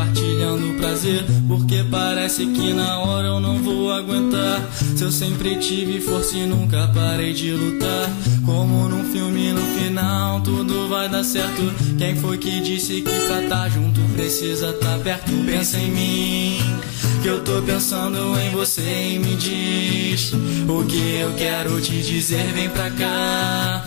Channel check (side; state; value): right; silent; digital silence